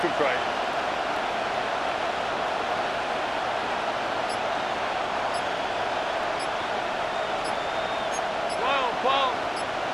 to try. Ball.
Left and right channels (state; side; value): identical; both; correlation 1.00